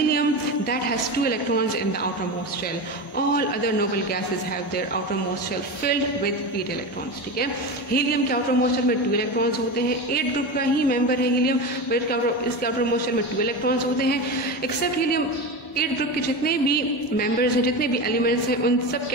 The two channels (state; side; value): normal; both; correlation 0.22